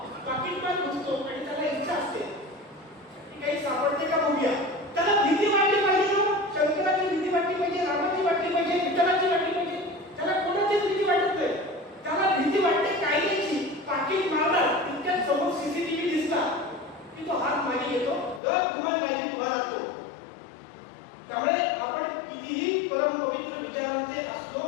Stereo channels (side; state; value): right; drops out; at 18.4 s